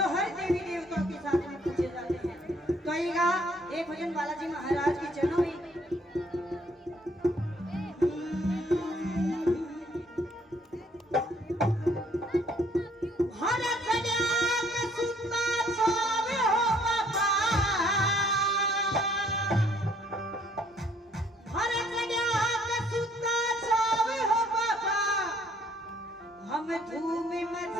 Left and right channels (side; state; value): both; normal; correlation 0.63